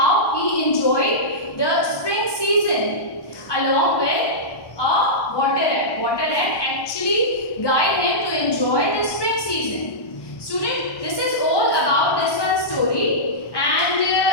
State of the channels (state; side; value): late; right; 1.1 ms